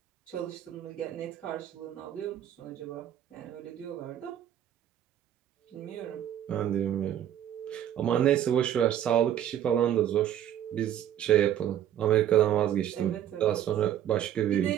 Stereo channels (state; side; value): quieter; left; 10.8 dB